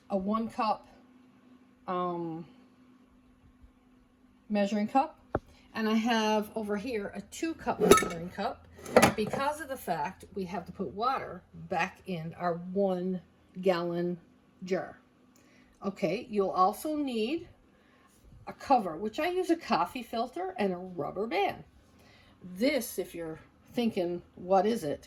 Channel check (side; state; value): both; identical; correlation 1.00